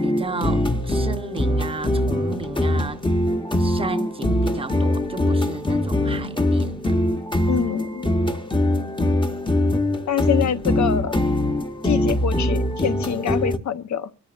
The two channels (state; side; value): normal; both; correlation 0.71